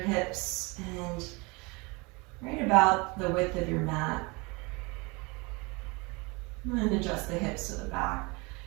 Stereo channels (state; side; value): quieter; left; 27.2 dB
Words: hips. and right about the width of your mat. And adjust the hips to the back.